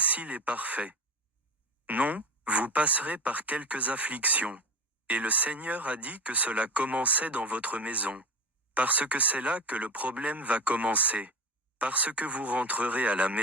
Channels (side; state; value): both; normal; correlation 0.25